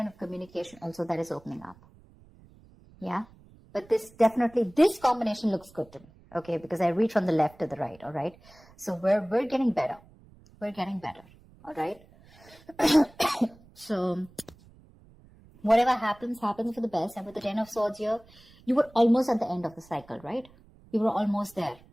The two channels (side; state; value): right; noise; rumble, 26 dB below the sound